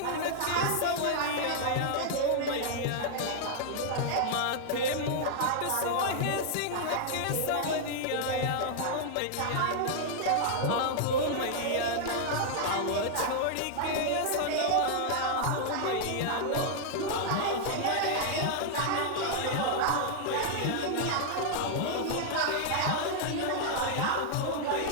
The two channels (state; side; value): different; both; correlation -0.01